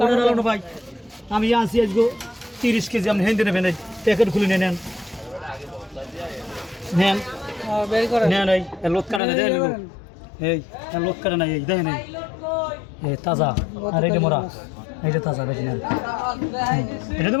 ভাই আমি আনছি আজকে 30 কেজি আপনি হেঁটে নেবেন প্যাকেট খুলে নেন নেন নেন এই লোক কাটা না দেন এই লোক কাটা না এই দেখেন এই তাজা আর এইটা মোরা এইটা তাজা বেশি নেন এটা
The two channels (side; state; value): right; drops out; at 9.2 s